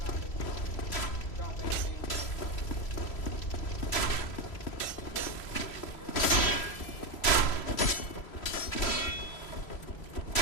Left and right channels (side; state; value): right; late; 3.0 ms